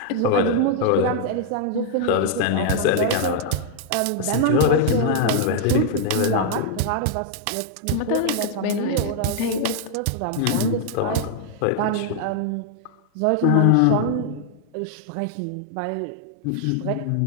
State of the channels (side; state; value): both; different; correlation 0.00